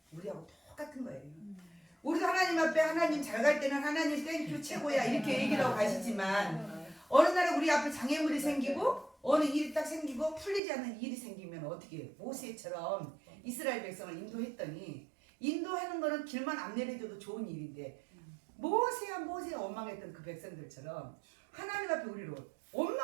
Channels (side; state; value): left; drops out; at 10.6 s